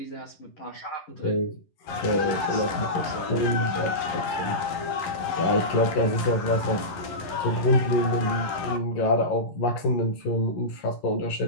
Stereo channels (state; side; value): late; right; 11 ms